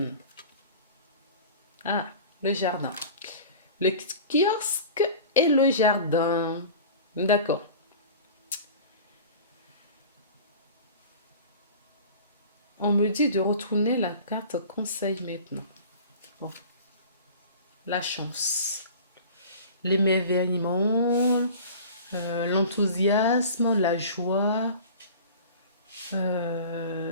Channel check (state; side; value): inverted; both; correlation -0.40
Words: Ah, le jardin. Le kiosque et le jardin. D'accord. On me dit de retourner la carte conseil maintenant. Bon. La chance. L'émerveillement, l'enthousiasme, la joie.